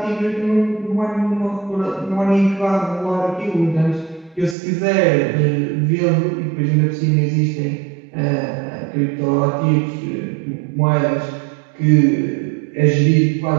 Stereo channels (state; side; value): drops out; left; at 4.5 s